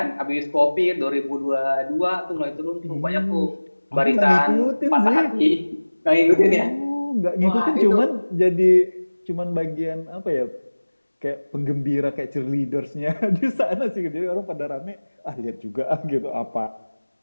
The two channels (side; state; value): both; inverted; correlation -1.00